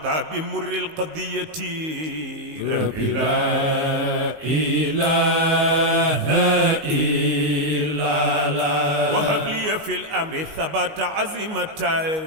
بمر القضية ربي لا إله إلا الله وهب لي في الأمر ثبات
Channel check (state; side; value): late; left; 19 ms